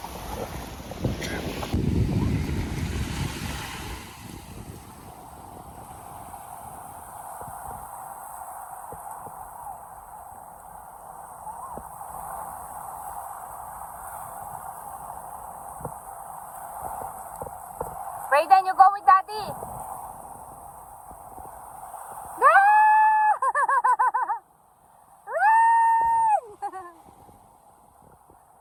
Brayden, you go with daddy!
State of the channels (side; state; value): both; identical; correlation 1.00